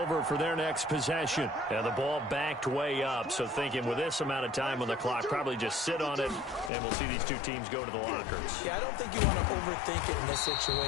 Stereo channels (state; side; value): drops out; right; at 6.7 s